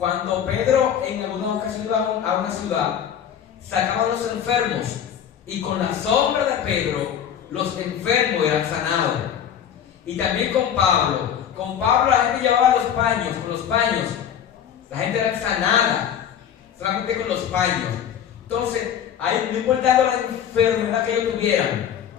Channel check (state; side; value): quieter; right; 9.1 dB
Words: Pedro en alguna ocasión iba a una ciudad, sacaba a los enfermos, y con la sombra de Pedro los enfermos eran sanados. Y también con Pablo la gente llevaba los paños, con los paños la gente era sanada solamente con los paños. Entonces, ahí, no importando la enfermedad que ellos tuvieran,